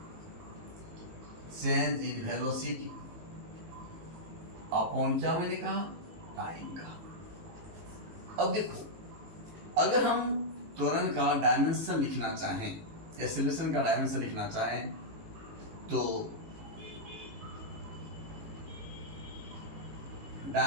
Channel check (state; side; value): late; left; 18 ms